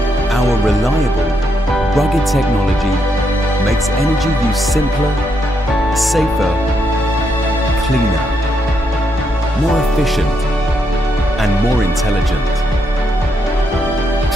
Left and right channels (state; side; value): normal; both; correlation 0.79